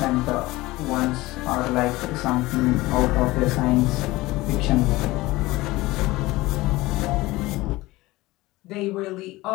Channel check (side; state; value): right; quieter; 19.6 dB